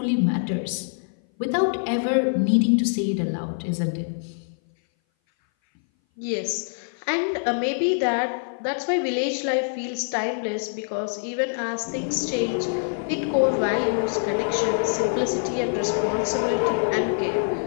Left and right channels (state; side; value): silent; right; 58 dB below the other